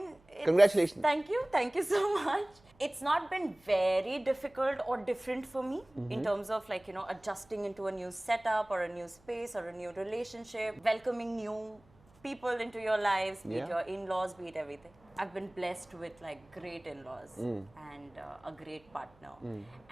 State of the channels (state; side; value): noise; right; hum, 29 dB below the sound